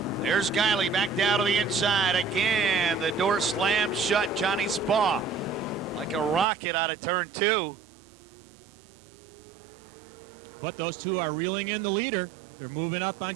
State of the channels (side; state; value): left; drops out; at 6.5 s